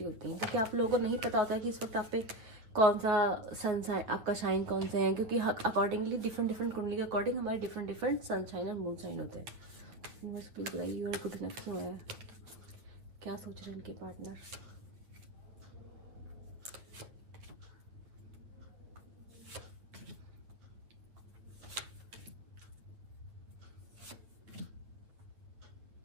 होती है, क्योंकि आप लोगों को नहीं पता होता है कि इस वक्त आप पे कौन सा सन साइन, आपका शाइन कौन से है, क्योंकि अकॉर्डिंगली डिफरेंट डिफरेंट कुंडली के अकॉर्डिंग हमारे डिफरेंट डिफरेंट सन साइन और मून साइन होते हैं। बस प्लीज बताइए, यू आर गुड इनफ क्यों है, क्या सोच रहे हैं इनके पार्टनर।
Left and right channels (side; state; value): left; late; 8.9 ms